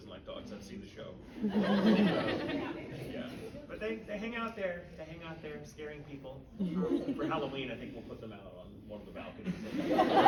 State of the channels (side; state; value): both; identical; correlation 1.00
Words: like dogs. I've seen the show. Yeah. But they hang out there. They hang out there scaring people. For Halloween, I think we'll put them out on one of the balconies.